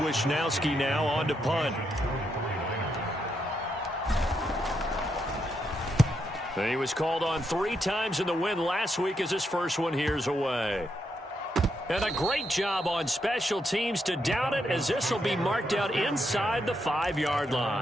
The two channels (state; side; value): normal; both; correlation 0.80